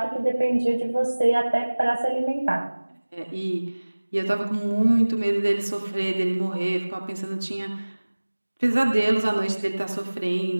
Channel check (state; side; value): inverted; both; correlation -1.00